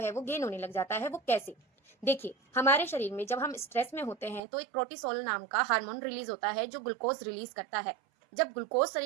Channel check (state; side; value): drops out; left; at 4.4 s